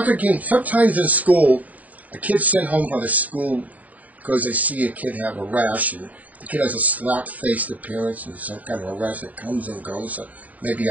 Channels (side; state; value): left; late; 0.073 ms